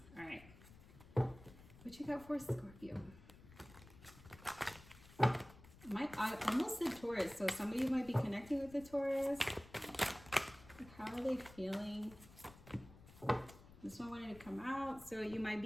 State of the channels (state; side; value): noise; left; rumble, 20 dB below the sound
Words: All right. What you got for Scorpio? I almost said Taurus, so some of you might be connecting with the Taurus. How are they feeling? This one wanted to come out, so you might